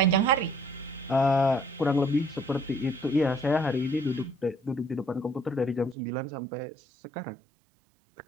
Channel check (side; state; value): left; drops out; at 6.0 s